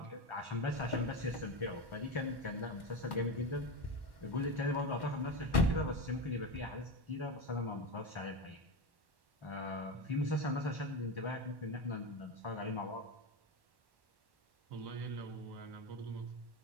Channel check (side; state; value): left; late; 1.1 ms